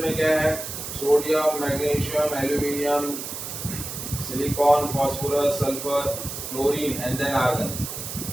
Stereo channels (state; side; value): noise; right; hiss, 7 dB below the sound